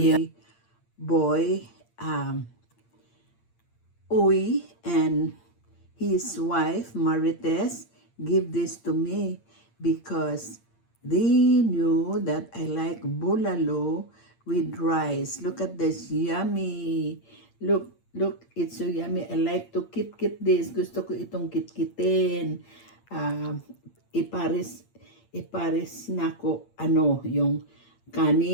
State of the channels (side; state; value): right; late; 8.7 ms